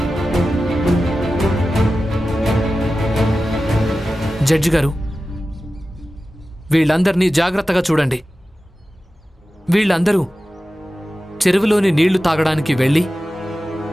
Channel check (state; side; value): normal; both; correlation 0.94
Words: జడ్జి గారు, వీళ్ళందరినీ జాగ్రత్తగా చూడండి. వీళ్ళందరూ చెరువులోని నీళ్లు తాగడానికి వెళ్ళి